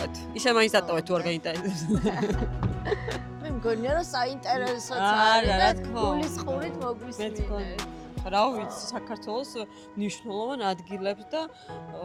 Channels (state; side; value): identical; both; correlation 1.00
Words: ისე მაინც დატოვეთ თუ არ გაინტერესებს. მე მგონია რომ საინტერესოც არა, რა არის თქმა და უნდა. გულის ხურით მე მოგვისმინეთ. თქონი. რა ვიცი, საქართველოს მნიშვნელოვან ადგილებს და